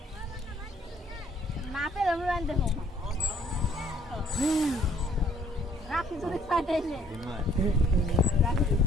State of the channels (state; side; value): normal; both; correlation 0.62